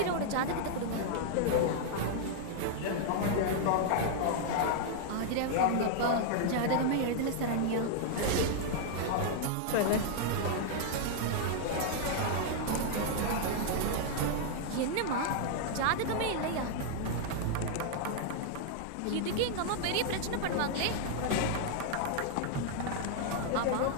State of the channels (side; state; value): both; different; correlation -0.01